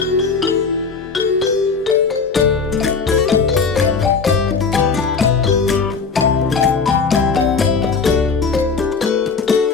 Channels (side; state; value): right; quieter; 5.0 dB